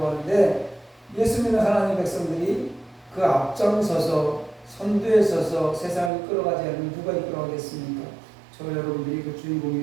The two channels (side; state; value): left; drops out; at 6.1 s